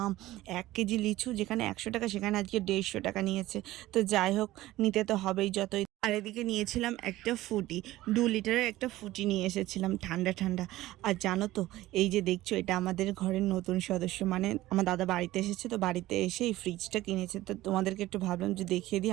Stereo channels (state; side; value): quieter; left; 16.4 dB